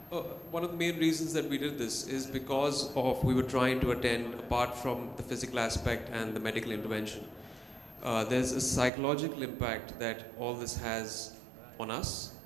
one of the main reasons that we did this is because we were trying to attend, apart from the physical aspect and the medical intervention, there's a psychological impact that all this has on us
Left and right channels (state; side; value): drops out; left; at 8.9 s